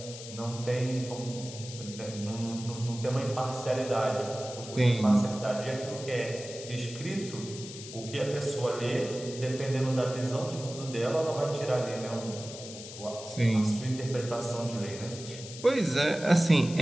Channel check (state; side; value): noise; left; hiss, 12 dB below the sound